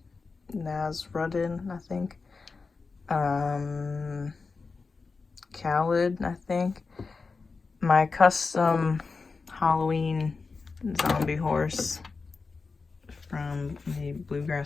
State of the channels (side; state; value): right; quieter; 4.4 dB